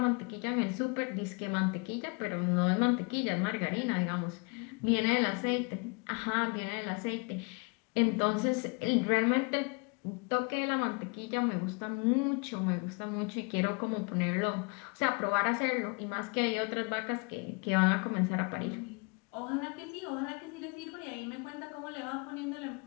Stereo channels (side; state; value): right; quieter; 32.5 dB